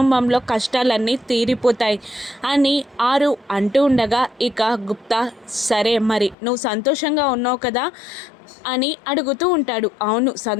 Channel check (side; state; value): right; drops out; at 6.4 s